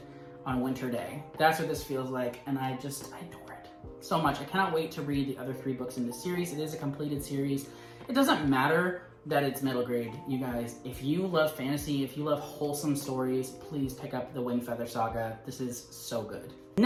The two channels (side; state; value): both; identical; correlation 1.00